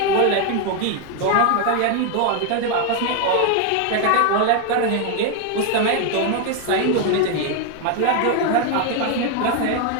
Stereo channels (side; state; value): both; different; correlation 0.01